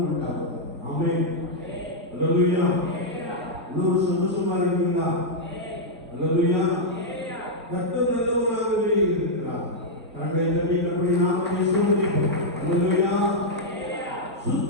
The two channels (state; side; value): normal; both; correlation -0.05